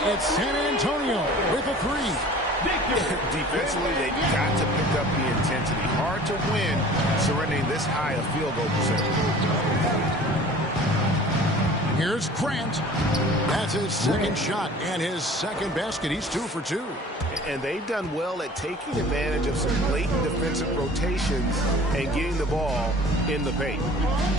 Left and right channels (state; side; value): normal; both; correlation 0.45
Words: it's San Antonio with a 3. Defensively, they've got to pick up the intensity. Hard to win surrendering this high a field goal percentage. Here's Grant. That's his second shot and his second basket. He's 2 for 2. And they've done well at taking advantage of some late defensive rotations and getting the ball in the paint.